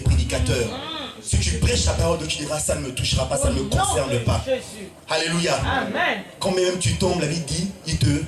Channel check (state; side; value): identical; both; correlation 1.00